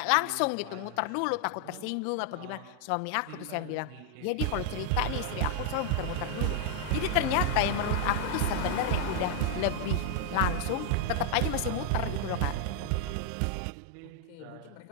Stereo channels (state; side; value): different; both; correlation 0.00